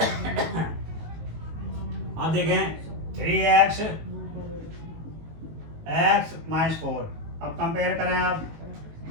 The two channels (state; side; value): late; left; 19 ms